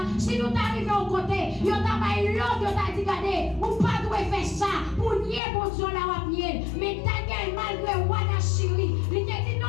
si nous arrivons au côté, nous avons l'autre, nous avons dit, regardez, ou pas doit faire ça, pour nier pour Dieu là, ou nier. Mais Daniel, malgré Wada Chiri, il a dit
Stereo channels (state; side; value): drops out; right; at 5.4 s